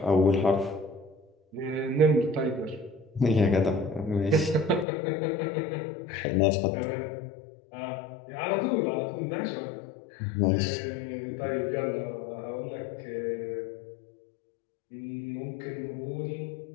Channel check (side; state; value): right; drops out; at 4.9 s